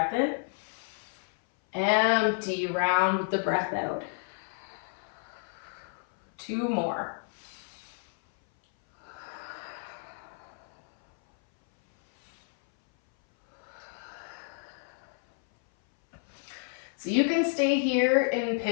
in. Empty, round with the breath out. 2 more. So you can stay here in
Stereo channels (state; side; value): silent; right; 57 dB below the other